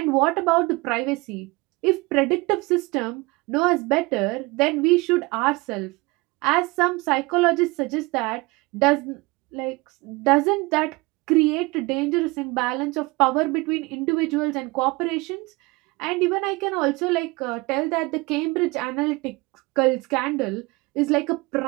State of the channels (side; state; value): left; quieter; 24.2 dB